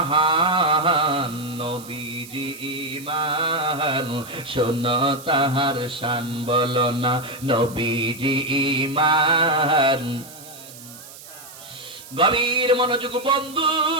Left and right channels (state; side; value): noise; right; hiss, 17 dB below the sound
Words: নবীজি ঈমান, শোনো তাহার শান বলো না। নবীজি ঈমান, গভীর মনোযোগ বন্ধু,